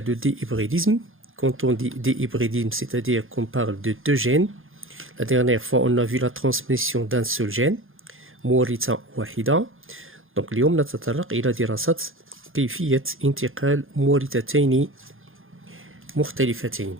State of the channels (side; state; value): left; late; 0.59 ms